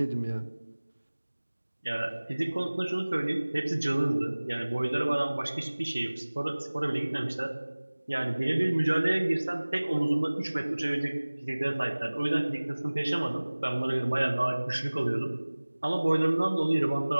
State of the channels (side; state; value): both; inverted; correlation -1.00